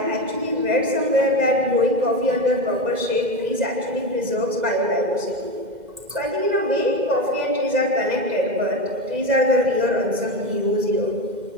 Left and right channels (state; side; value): late; left; 2.0 ms